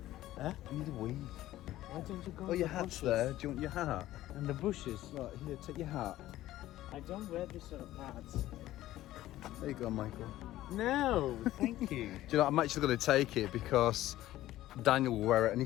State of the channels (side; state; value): right; quieter; 14.8 dB